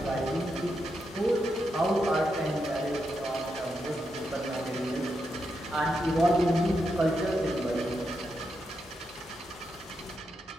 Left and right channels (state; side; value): normal; both; correlation 0.84